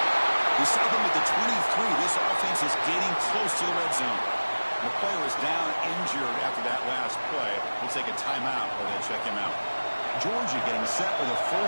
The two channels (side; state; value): both; inverted; correlation -1.00